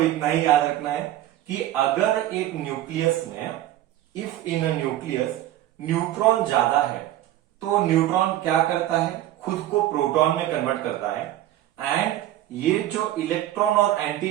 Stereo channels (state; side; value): quieter; left; 13.7 dB